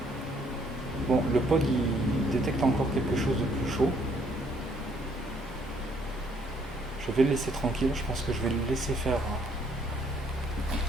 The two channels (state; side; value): normal; both; correlation 0.66